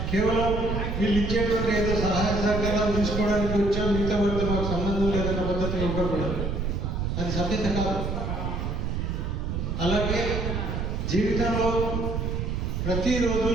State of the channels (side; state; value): right; noise; rumble, 2 dB below the sound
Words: కేవలం వీళ్ళు ఇచ్చేటువంటి ఏదో సహాయ సహకారాలు తీసుకోవడానికి వచ్చాం, మిగతా వారితో మాకు సంబంధం లేదన్న పద్ధతిలో ఉండకూడదు. అది సభ్యత కాదు. అలాగే జీవితంలో ప్రతిరోజు